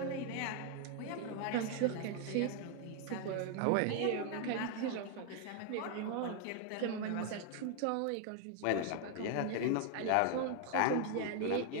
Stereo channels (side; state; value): both; different; correlation 0.00